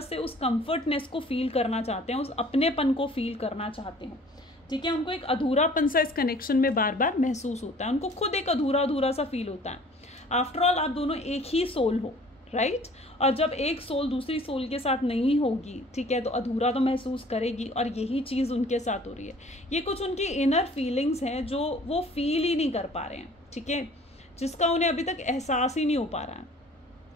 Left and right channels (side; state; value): both; normal; correlation 0.51